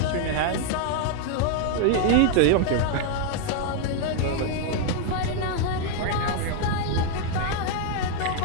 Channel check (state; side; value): different; both; correlation 0.00